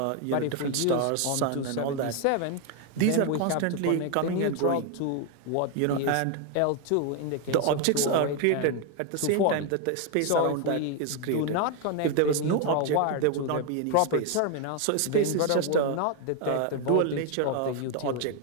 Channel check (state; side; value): different; both; correlation 0.01